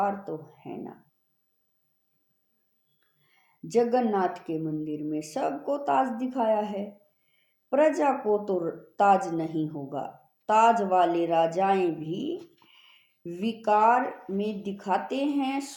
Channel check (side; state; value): both; identical; correlation 1.00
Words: तो है ना। जगन्नाथ के मंदिर में सबको ताज दिखाया है, प्रजा को तो ताज नहीं होगा। ताज वाले राजाएं भी विकार में दिखाते हैं,